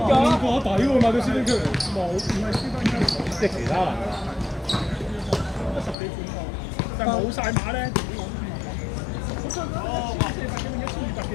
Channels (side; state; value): right; drops out; at 6.0 s